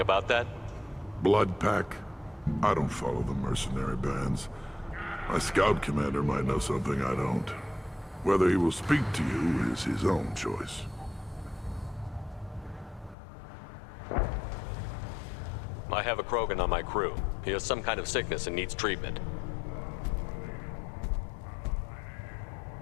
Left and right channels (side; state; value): right; drops out; at 13.2 s